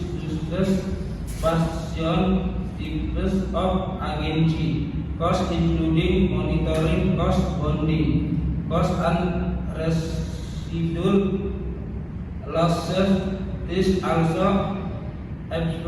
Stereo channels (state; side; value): identical; both; correlation 1.00